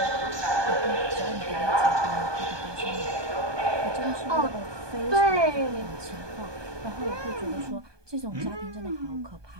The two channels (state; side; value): late; left; 1.2 ms